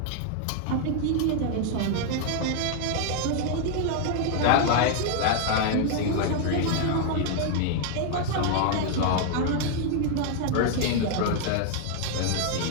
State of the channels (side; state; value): both; different; correlation 0.00